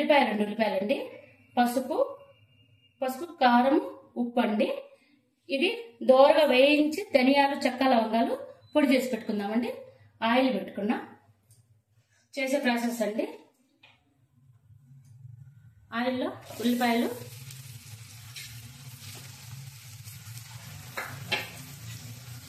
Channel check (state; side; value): identical; both; correlation 1.00